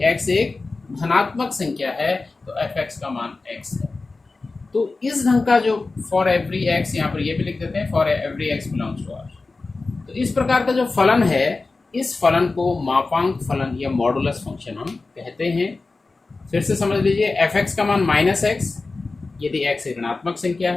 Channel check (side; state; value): right; quieter; 3.7 dB